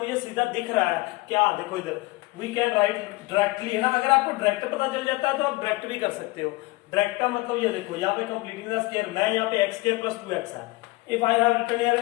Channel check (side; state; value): right; quieter; 21.9 dB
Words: सीधा दिख रहा है क्या, देखो इधर वी कैन राइट डायरेक्टली है ना। अगर आपको डायरेक्ट पता चल जाता है तो आप डायरेक्ट भी कर सकते हो। डायरेक्ट का मतलब ये देखो यहाँ पे कंप्लीटिंग द स्क्वायर मैं यहाँ पे x स्क्वायर प्लस 2x है, if I have written here